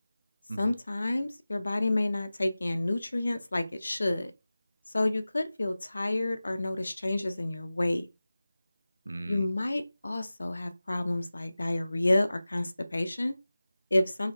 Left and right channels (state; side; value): inverted; both; correlation -0.97